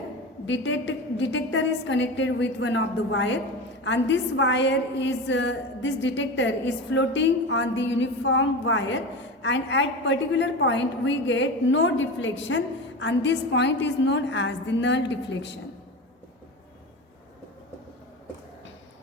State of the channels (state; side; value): normal; both; correlation 0.26